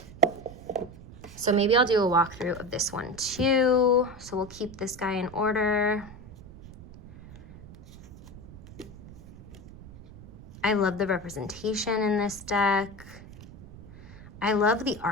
So maybe I'll do a walkthrough of this one too. So we'll keep this guy in order. I love the representation in this deck. I love the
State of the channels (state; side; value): noise; right; rumble, 17 dB below the sound